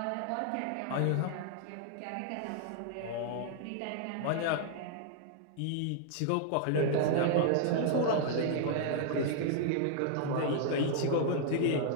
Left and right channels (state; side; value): different; both; correlation 0.00